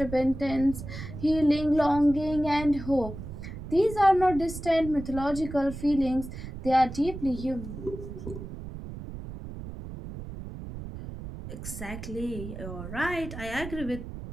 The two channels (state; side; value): noise; right; rumble, 10 dB below the sound